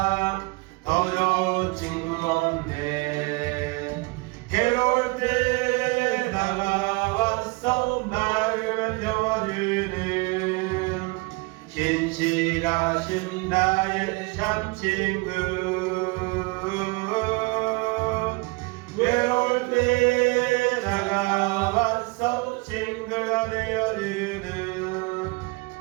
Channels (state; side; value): quieter; left; 25.8 dB